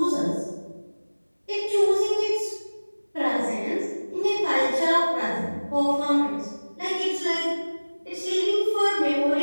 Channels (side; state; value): both; inverted; correlation -1.00